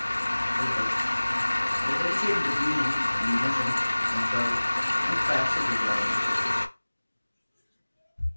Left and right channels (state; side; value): inverted; both; correlation -1.00